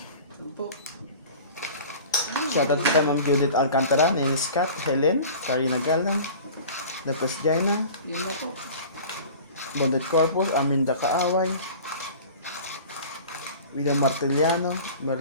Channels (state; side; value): inverted; both; correlation -0.40